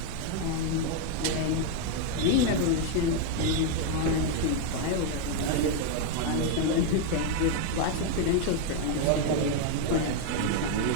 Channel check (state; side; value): different; both; correlation 0.01